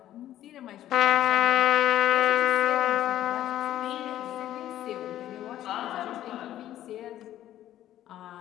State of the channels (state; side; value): quieter; right; 12.7 dB